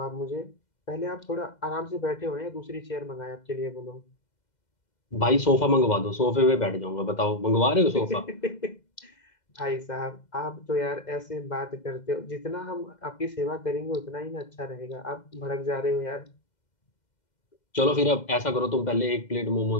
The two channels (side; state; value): right; late; 2.1 ms